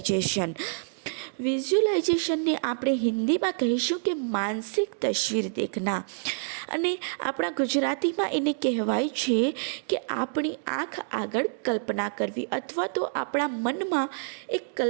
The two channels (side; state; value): left; silent; digital silence